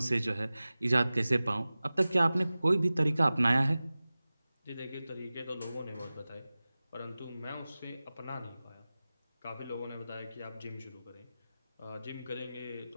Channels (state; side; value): inverted; both; correlation -0.97